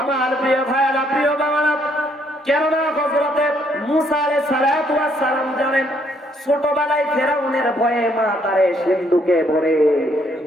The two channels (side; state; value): both; normal; correlation 0.69